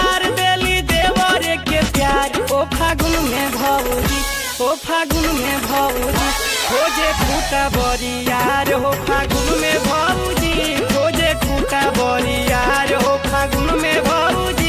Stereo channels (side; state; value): both; identical; correlation 1.00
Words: देली देवरे के प्यार। ओ फागुन में भौजी, ओ फागुन में भौजी खोजे खूटा बरियार। हो फागुन में भौजी खोजे खूटा बरियार। हो फागुन में